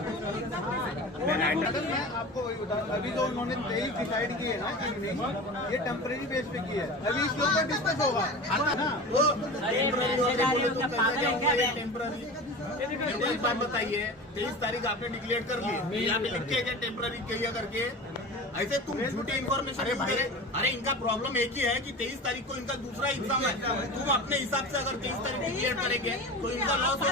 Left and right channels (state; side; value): normal; both; correlation 0.32